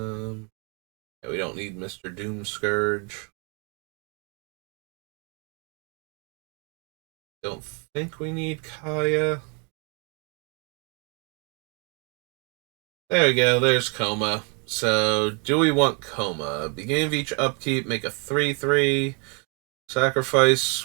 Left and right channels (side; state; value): left; quieter; 35.7 dB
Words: we don't need Mr. Doom Scourge. Don't think we need Kaya. There we go, there's Coma. So, do we want Coma? Beginning of each upkeep, make a 3/3.